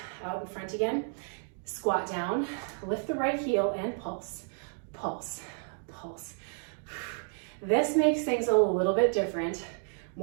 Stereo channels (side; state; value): left; silent; 55 dB below the other